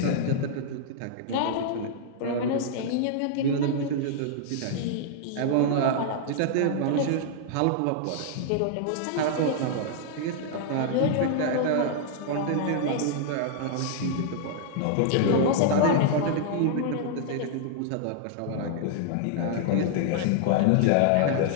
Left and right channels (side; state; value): both; different; correlation -0.01